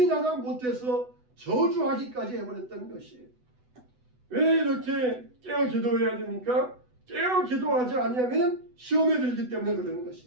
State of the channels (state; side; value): late; left; 8.0 ms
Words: 못해서 저주하기까지 해버렸던 것이에요. 왜 이렇게 깨어 기도해야 됩니까? 깨어 기도하지 않으면 시험에 들기 때문에 그러는